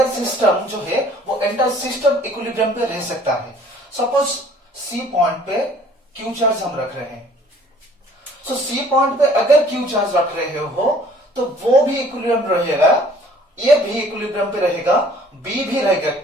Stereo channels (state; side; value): normal; both; correlation 0.55